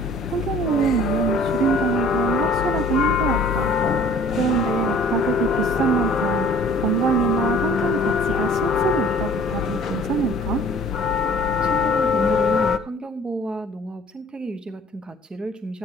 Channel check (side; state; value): both; normal; correlation 0.51